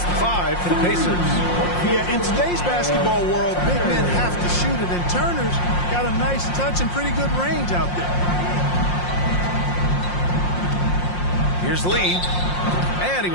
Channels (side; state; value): right; late; 5.6 ms